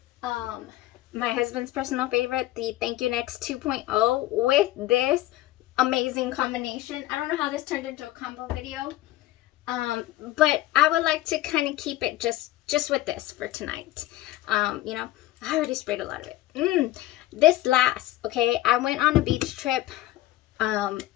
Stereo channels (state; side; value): quieter; right; 15.9 dB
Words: my husband's personal favorite, the Thank You Next 2.0 with this amazing combination. I don't know how this turned into a combo video, but I would like to kind of keep it just with this for tonight. You know, I already sprayed a lot of it. This last, okay, I went on a beach trip,